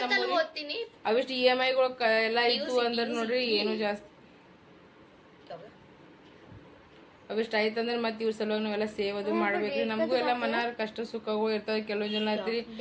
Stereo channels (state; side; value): identical; both; correlation 1.00